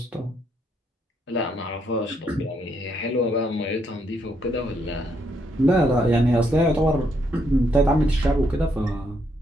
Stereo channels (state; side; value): normal; both; correlation 0.75